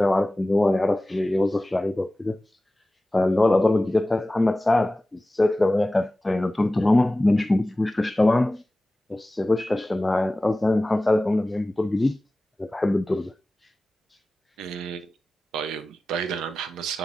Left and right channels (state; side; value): normal; both; correlation 0.97